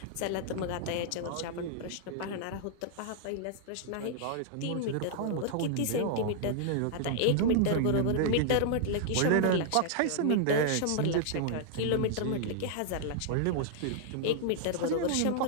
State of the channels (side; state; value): both; different; correlation -0.01